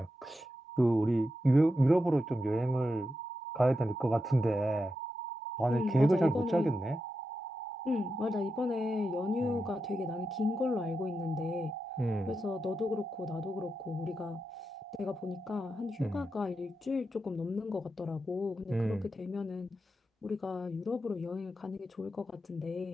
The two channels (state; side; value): normal; both; correlation 0.88